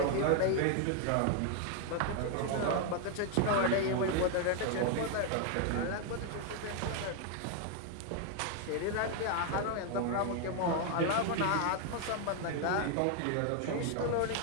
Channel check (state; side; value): different; both; correlation 0.00